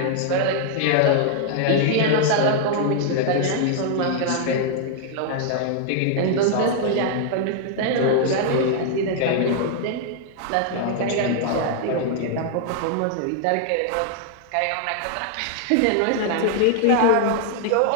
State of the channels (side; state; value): both; different; correlation -0.01